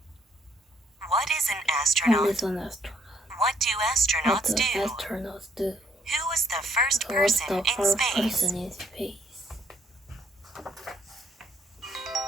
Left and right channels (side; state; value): both; normal; correlation 0.68